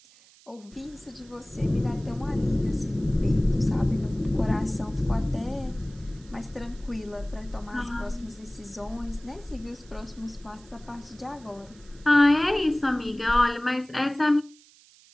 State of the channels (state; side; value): noise; right; hiss, 26 dB below the sound